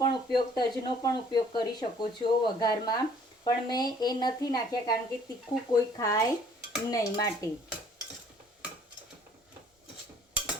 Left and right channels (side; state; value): both; normal; correlation 0.58